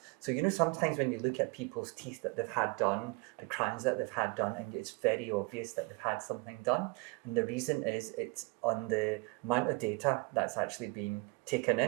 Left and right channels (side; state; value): left; quieter; 28.0 dB